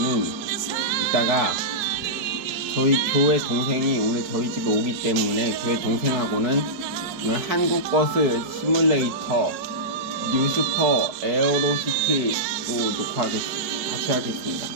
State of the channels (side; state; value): left; late; 4.6 ms